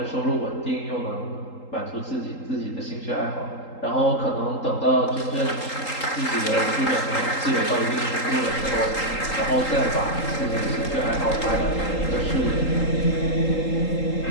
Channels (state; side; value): late; right; 3.8 ms